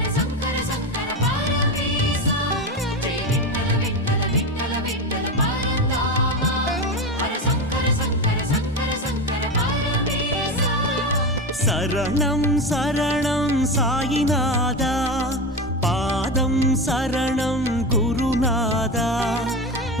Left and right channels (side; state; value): both; normal; correlation 0.20